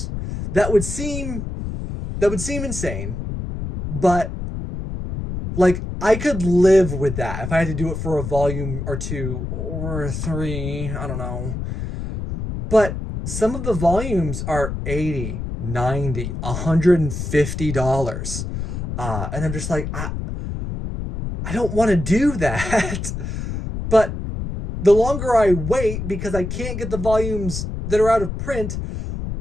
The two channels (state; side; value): noise; left; rumble, 5 dB below the sound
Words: That would seem insane, but like I could live with that if I had to do it for a volume or two or three. I don't know. But some of the volumes are $80, $90, $150. And I'm just like, I don't want to do that. But the longer I wait, because I can't get the volumes that are out of print,